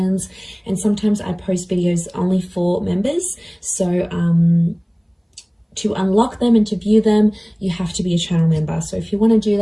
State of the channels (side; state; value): both; identical; correlation 1.00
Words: And sometimes I post videos only for members. So to unlock them and to view them, you have to be a channel member. So if you want to do